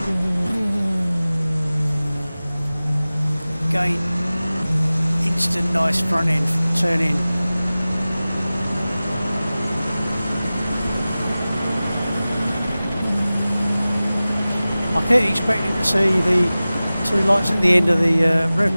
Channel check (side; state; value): both; inverted; correlation -0.97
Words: Again, instant nice front end turn in. I kept expecting to see the two lights at the end of the